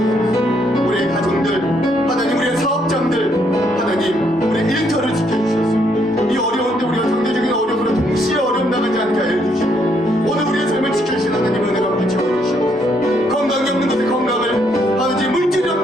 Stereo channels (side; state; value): both; normal; correlation 0.72